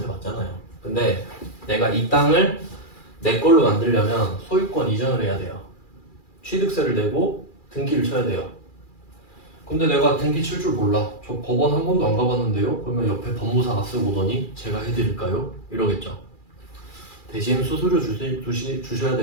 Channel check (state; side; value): late; right; 2.4 ms